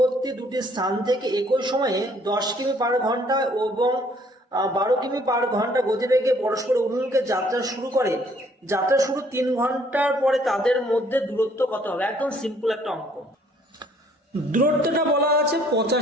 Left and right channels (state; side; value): normal; both; correlation 0.62